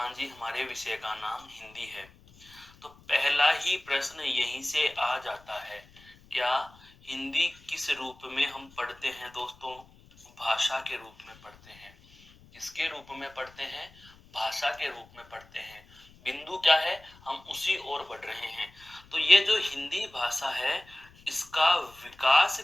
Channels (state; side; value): noise; left; rumble, 25 dB below the sound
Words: जी हमारे विषय का नाम हिंदी है, तो पहला ही प्रश्न यहीं से आ जाता है, क्या हिंदी किस रूप में हम पढ़ते हैं दोस्तों? भाषा के रूप में पढ़ते हैं। किसके रूप में पढ़ते हैं? भाषा के रूप में पढ़ते हैं। बिंदु क्या है? हम उसी ओर बढ़ रहे हैं। तो ये जो हिंदी भाषा है, इसका विकास